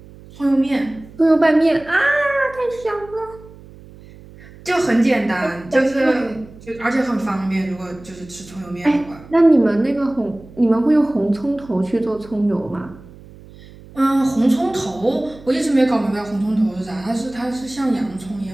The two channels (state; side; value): noise; right; hum, 20 dB below the sound